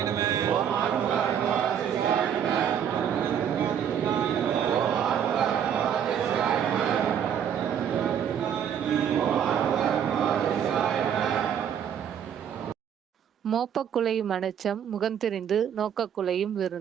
நம மோப்பக்குலையும் அனச்சம் முகந்தெரிந்து நோக்கக்குலையும்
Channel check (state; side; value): quieter; left; 8.7 dB